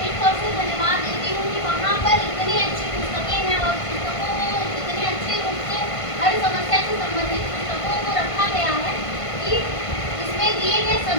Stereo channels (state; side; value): late; right; 1.5 ms